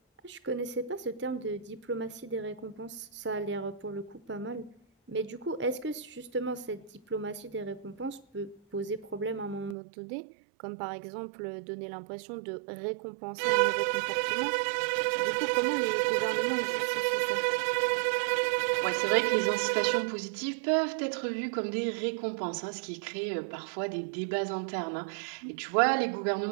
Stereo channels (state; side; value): drops out; left; at 9.8 s